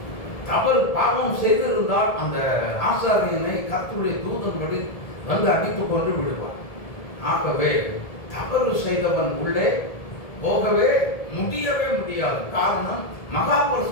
தவறு பாவம் செய்திருந்தால் அந்த ஆசாரியனை கர்த்தருடைய தூதன் வந்து அடித்துக் கொண்டு விடுவார். ஆகவே தவறு செய்தவன் உள்ளே போகவே முடியவே முடியாது. காரணம் மகா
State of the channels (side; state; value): right; late; 1.7 ms